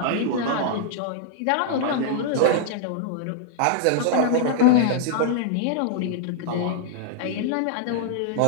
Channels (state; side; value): different; both; correlation -0.01